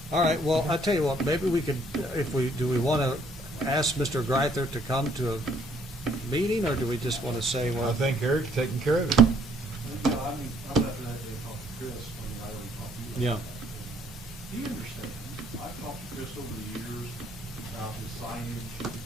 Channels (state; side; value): normal; both; correlation 0.64